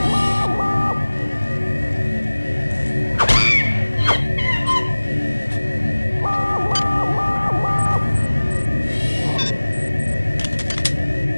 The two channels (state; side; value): inverted; both; correlation -1.00